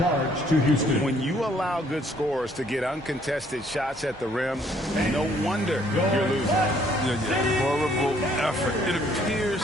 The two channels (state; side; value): normal; both; correlation 0.64